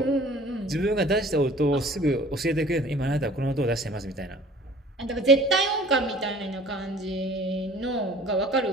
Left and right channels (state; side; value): normal; both; correlation 0.49